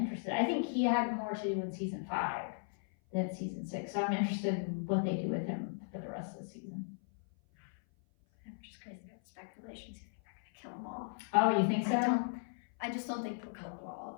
I think he had more to do in season 5 than season 6. So I'm interested in what they do with him for the rest of the season. I'm just crazy about speculations. You think they're gonna kill him off? Oh, you think so? I just don't think they'll kill him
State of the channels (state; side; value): silent; right; 53 dB below the other